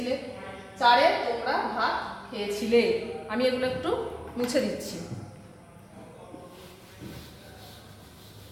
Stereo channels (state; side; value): identical; both; correlation 1.00